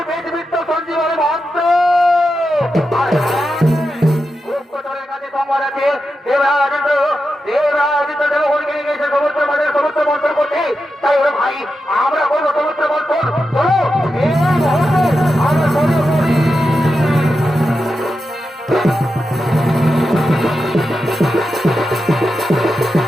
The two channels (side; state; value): both; normal; correlation 0.89